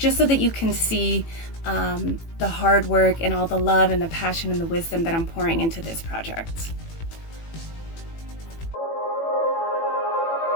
so that you can see the hard work and all the love and the passion and the wisdom that I'm pouring into this project.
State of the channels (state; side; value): late; right; 18 ms